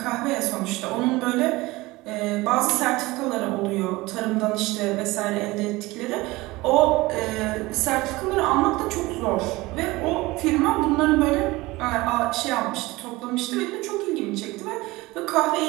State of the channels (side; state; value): left; quieter; 20.7 dB